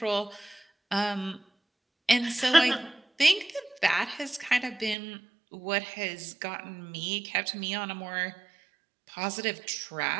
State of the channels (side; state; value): left; drops out; at 5.0 s